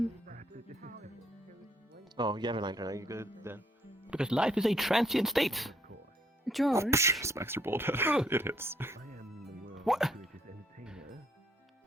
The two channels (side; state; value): both; normal; correlation 0.69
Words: Oh, you have a lantern. Are you good then? Because life is a transient state. George. Smacks your bald head. It hits. What?